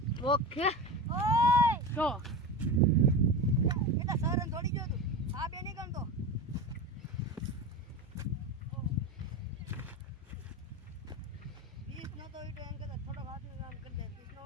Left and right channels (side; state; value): both; normal; correlation 0.25